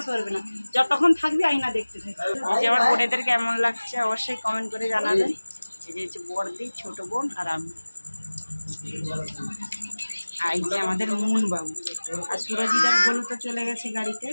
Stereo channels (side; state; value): both; inverted; correlation -1.00